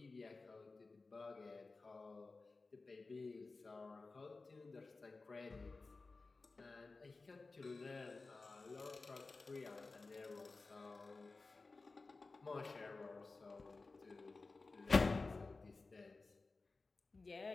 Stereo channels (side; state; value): right; quieter; 3.7 dB